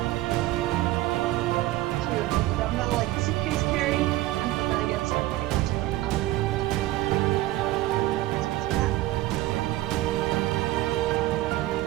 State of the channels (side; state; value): left; quieter; 16.8 dB